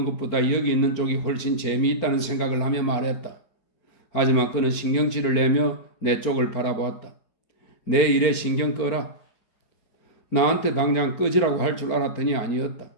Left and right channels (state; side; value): late; right; 4.5 ms